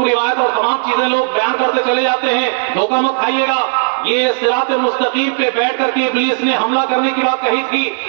روایت اور تمام چیزیں لوگ بیان کرتے چلے جاتے ہیں، دھوکہ مت کھائیے گا. یہ صراط مستقیم پہ بیٹھ کر کے ابلیس نے حملہ کرنے کی بات کہی تھی،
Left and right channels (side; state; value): left; silent; digital silence